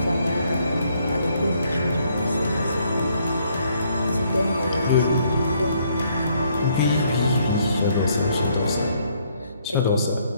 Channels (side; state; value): both; inverted; correlation -0.69